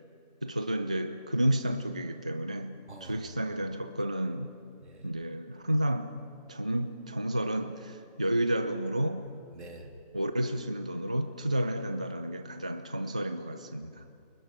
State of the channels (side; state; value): both; inverted; correlation -0.92